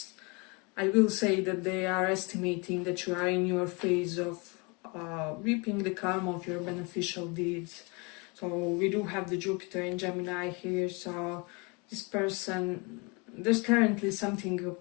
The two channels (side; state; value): right; quieter; 29.9 dB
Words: I will say that they are estimating that you are in your phase of reaping the karma of your beneficial deeds. So we do have the Jupiter in Gemini here, so this person, there's currently something